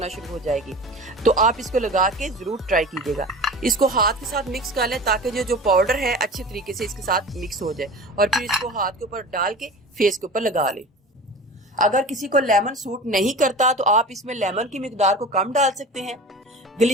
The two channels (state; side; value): normal; both; correlation 0.36